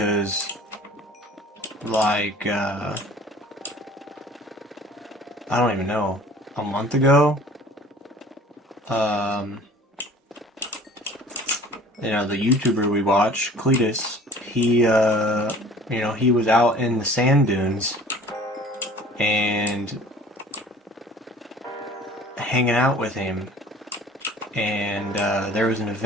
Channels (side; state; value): both; normal; correlation 0.48